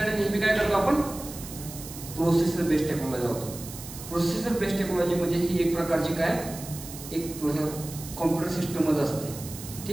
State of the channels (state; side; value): noise; right; hiss, 13 dB below the sound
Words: नेहमी काय करतो आपण, प्रोसेसर बेस्ड टेक्नॉलॉजी वापरतो. प्रोसेसर बेस्ड टेक्नॉलॉजी म्हणजे ही एक प्रकारची काय, एक कॉम्प्युटर सिस्टमच असते.